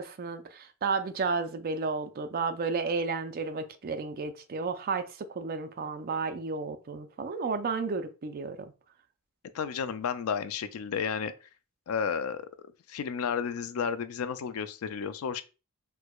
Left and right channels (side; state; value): both; normal; correlation -0.18